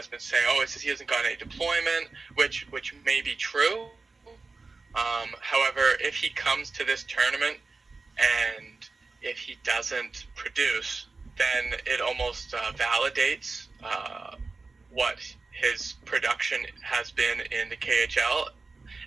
been saying, "Oh, it's just he hasn't gotten any deployment," which may be true. However, if he comes to this tournament and if he doesn't produce, then it almost validates what his production has been in the KHL,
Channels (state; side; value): quieter; left; 3.9 dB